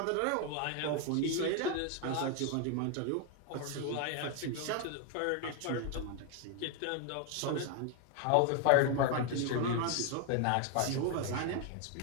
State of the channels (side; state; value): both; different; correlation 0.00